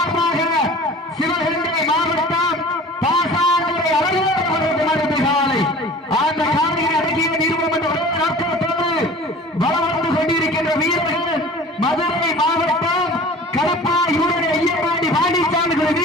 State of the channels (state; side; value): normal; both; correlation 0.43